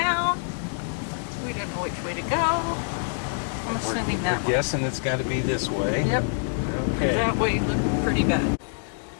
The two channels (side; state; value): right; silent; digital silence